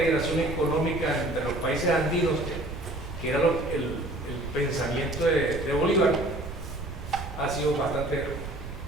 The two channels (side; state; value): right; noise; rumble, 9 dB below the sound